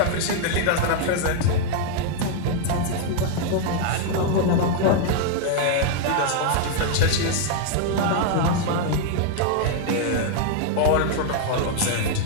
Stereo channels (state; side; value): different; both; correlation 0.00